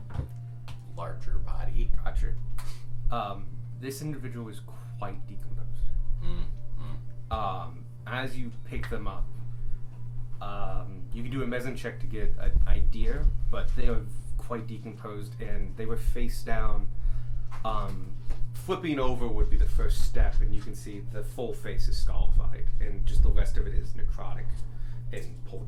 larger body. Gotcha. This individual is quite decomposed. As you pick them up, you can do a medicine check to get an idea, but they are quite decomposed, and they were face down. Flipping over would be the first step, and you can see the full face is scarified, and just the rest of it is necrotic and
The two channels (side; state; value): both; identical; correlation 1.00